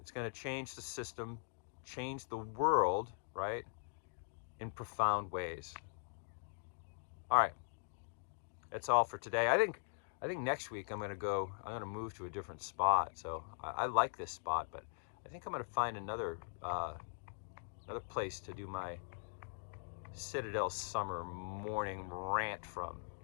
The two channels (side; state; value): right; silent; digital silence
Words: going to change the system, change the world, right, in profound ways. All right, that's all for today. I think next week I'm going to move to a different spot. So I like this spot, but I think I'm going to find another place to do my Citadel summer morning rant from.